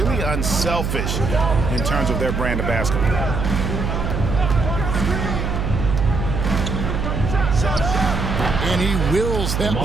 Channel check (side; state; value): right; noise; hum, 2 dB below the sound